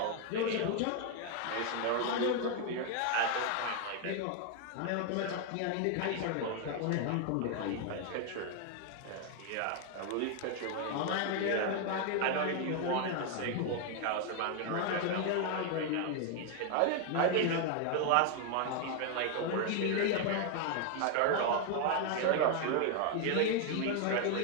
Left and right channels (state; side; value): different; both; correlation 0.00